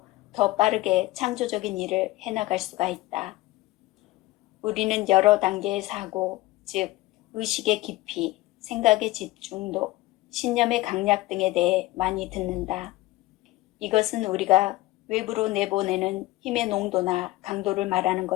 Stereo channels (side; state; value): right; quieter; 18.7 dB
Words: 더 빠르게 창조적인 일을 해나갈 수가 있다. 우리는 여러 단계의 사고, 즉 의식의 깊이, 생각의 집중도, 신념의 강약 등에 대해 많이 듣는다. 이것은 우리가 외부로 내보내는 힘의 농도나 강도를 말하는